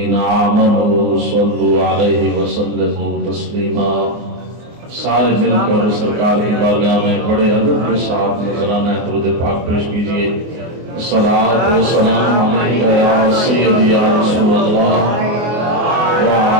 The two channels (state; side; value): late; left; 24 ms